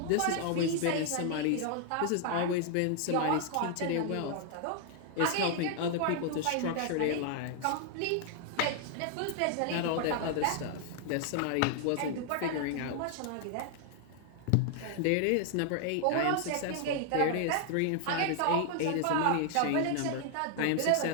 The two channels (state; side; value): different; both; correlation 0.00